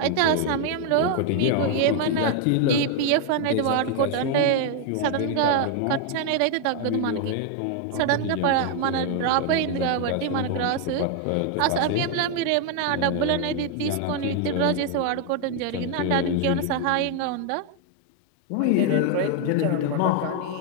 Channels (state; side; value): different; both; correlation 0.00